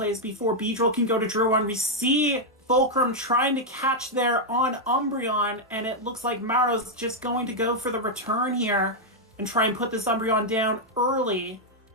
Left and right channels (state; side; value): normal; both; correlation -0.02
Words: before Beedrill can go to Drew 1. We see Fulcrum trying to catch there on Umbreon, and it looks like Maro's just going to go for the return here and try and put this Umbreon down early.